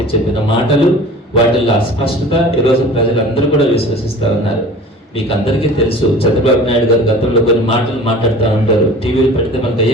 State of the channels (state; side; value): normal; both; correlation 0.42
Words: మాటలు, వాటిల్లో అస్పష్టత ఈరోజు ప్రజలందరూ కూడా విశ్వసిస్తూ ఉన్నారు. మీకు అందరికీ తెలుసు, చంద్రబాబు నాయుడు గారు గతంలో కొన్ని మాటలు మాట్లాడుతూ ఉంటారు. టీవీలు పెడితే మనకు